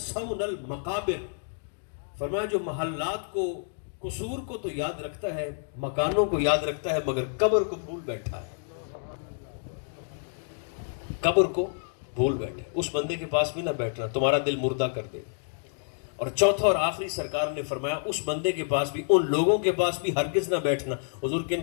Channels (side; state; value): right; silent; digital silence